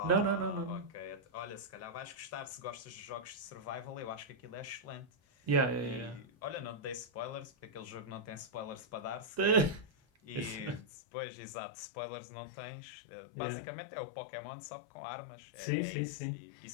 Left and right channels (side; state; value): right; drops out; at 10.9 s